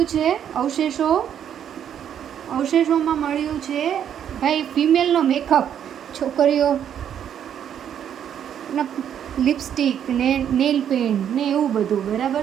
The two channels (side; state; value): left; quieter; 9.3 dB